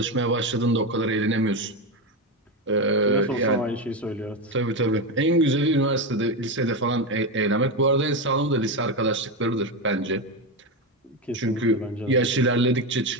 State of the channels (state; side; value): normal; both; correlation 0.13